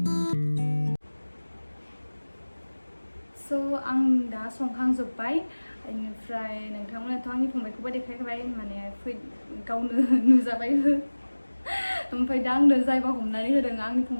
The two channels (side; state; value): both; inverted; correlation -1.00